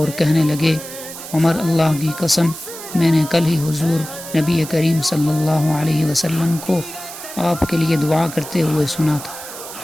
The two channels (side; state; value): right; noise; hiss, 12 dB below the sound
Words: کہنے لگے، عمر، اللہ کی قسم، میں نے کل ہی حضور نبی کریم صلی اللہ علیہ وسلم کو آپ کے لیے دعا کرتے ہوئے سنا تھا۔